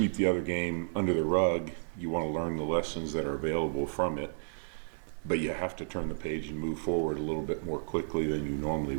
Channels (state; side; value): silent; left; digital silence